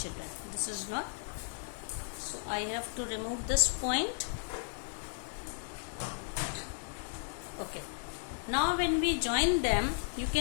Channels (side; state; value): right; silent; digital silence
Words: children. This is not. So I have to remove this point. Okay. Now when we join them, you